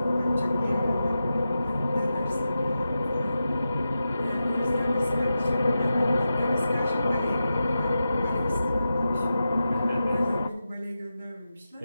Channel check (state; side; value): inverted; both; correlation -0.91